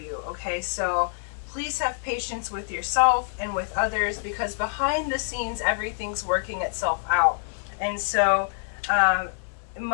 Okay, so please have patience with yourself and with others, because behind the scenes, everything's working itself out. And so,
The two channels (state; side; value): silent; right; digital silence